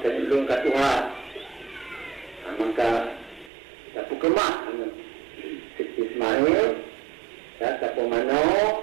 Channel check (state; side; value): drops out; left; at 3.5 s